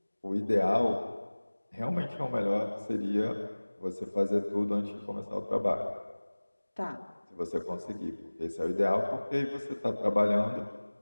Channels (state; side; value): inverted; both; correlation -1.00